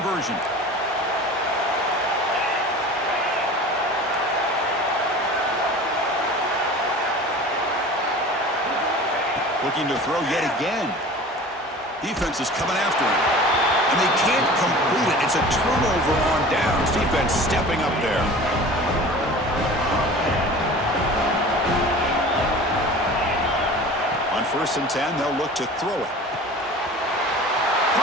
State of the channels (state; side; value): normal; both; correlation 0.40